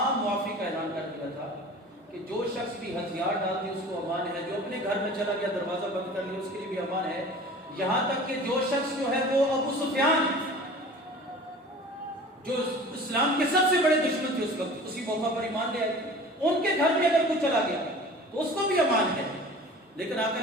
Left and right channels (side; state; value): both; normal; correlation 0.42